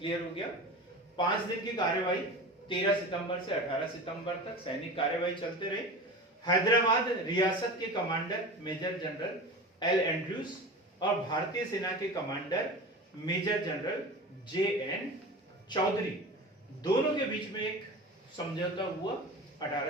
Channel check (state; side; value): normal; both; correlation 0.32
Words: हो गया? 5 दिन की कार्यवाही 13 सितंबर से 18 सितंबर तक सैनिक कार्यवाही चलते रही। हैदराबाद रियासत के commander major general L Andrews और भारतीय सेना के commander major general JN Chaudhary, दोनों के बीच में एक समझौता हुआ